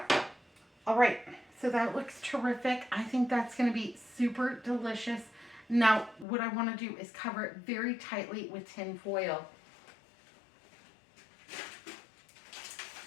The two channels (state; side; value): drops out; right; at 6.2 s